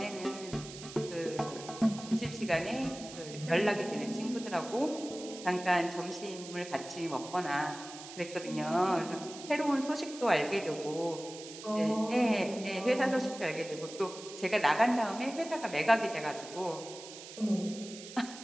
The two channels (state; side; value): noise; right; hiss, 14 dB below the sound